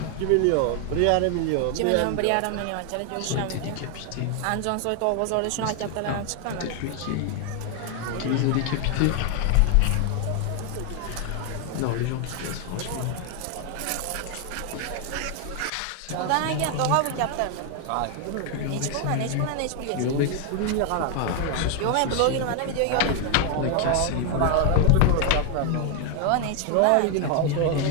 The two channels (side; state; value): both; different; correlation 0.01